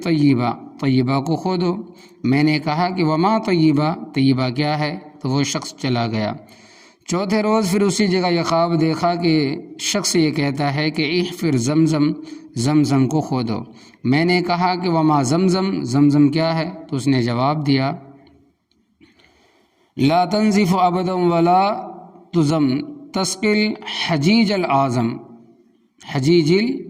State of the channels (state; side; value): identical; both; correlation 1.00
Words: طیبہ، طیبہ کو کھودو۔ میں نے کہا کہ وما طیبہ، طیبہ کیا ہے؟ تو وہ شخص چلا گیا۔ چوتھے روز پھر اسی جگہ یہ خواب دیکھا کہ شخص یہ کہتا ہے کہ احفر زمزم، زمزم کو کھودو۔ میں نے کہا کہ وما زمزم، زمزم کیا ہے؟ تو اس نے جواب دیا، لا تنزف ابدا ولا تزم تسقل حجیج العظم، حجیج